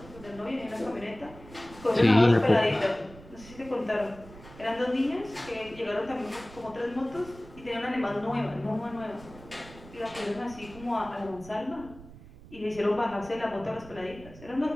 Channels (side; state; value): right; noise; rumble, 18 dB below the sound